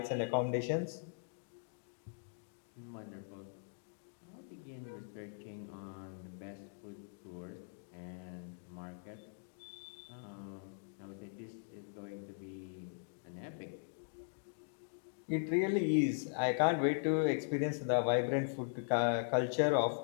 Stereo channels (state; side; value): silent; right; digital silence